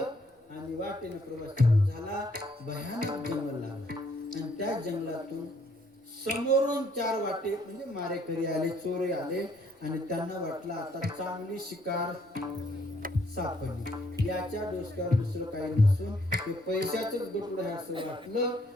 आणि वाटेने प्रवास चालू झाला. भयानक जंगल लागला आणि त्या जंगलातून समोरून 4 वाटे म्हणजे मारेकरी आले, चोरे आले आणि त्यांना वाटलं आता चांगली शिकार सापडली. याच्या डोसक्यावर दुसरं काही नसून ते पैशाचंच गटुडं आहे असं वाटलं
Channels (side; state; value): both; normal; correlation 0.67